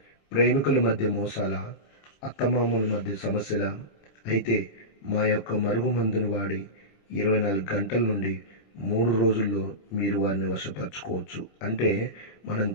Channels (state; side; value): late; right; 26 ms